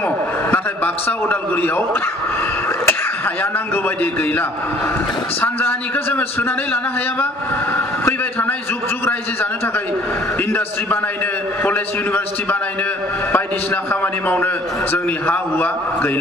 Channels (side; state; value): both; normal; correlation 0.55